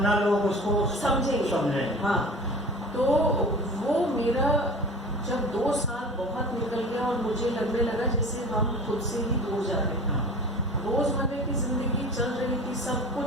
न लोग उसको समझेंगे। हाँ, तो वो मेरा जब 2 साल बहुत निकल गया और मुझे लगने लगा जैसे हम खुद से ही दूर जा रहे हैं। रोजमर्रा की जिंदगी चल रही थी, सब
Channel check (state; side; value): normal; both; correlation 0.39